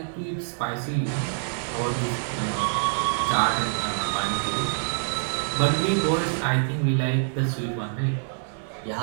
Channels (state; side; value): silent; left; digital silence